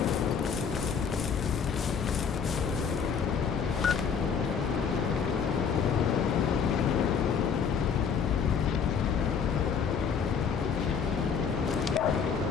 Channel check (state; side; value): quieter; right; 6.5 dB